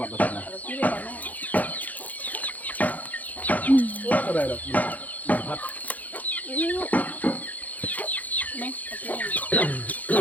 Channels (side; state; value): right; late; 0.079 ms